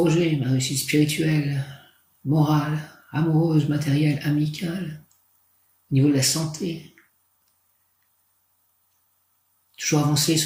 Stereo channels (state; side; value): identical; both; correlation 1.00